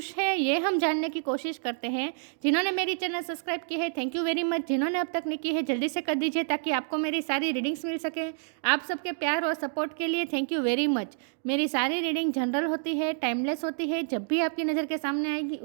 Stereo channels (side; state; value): left; silent; digital silence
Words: है। ये हम जानने की कोशिश करते हैं। जिन्होंने मेरी चैनल सब्सक्राइब की है, थैंक यू वेरी मच। जिन्होंने अब तक नहीं की है, जल्दी से कर दीजिए ताकि आपको मेरी सारी रीडिंग्स मिल सके। आप सबके प्यार और सपोर्ट के लिए थैंक यू वेरी मच। मेरी सारी रीडिंग जनरल होती है, टाइमलेस होती है। जब भी आपकी नज़र के सामने आएगी